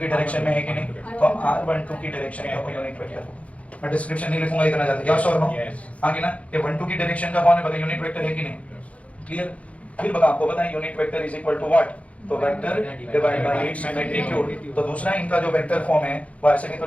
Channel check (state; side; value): late; right; 0.065 ms